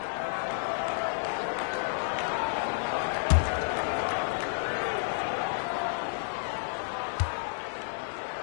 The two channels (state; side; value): silent; right; digital silence